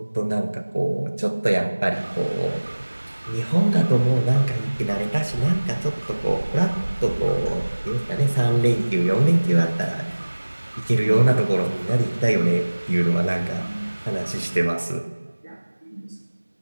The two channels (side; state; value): both; inverted; correlation -1.00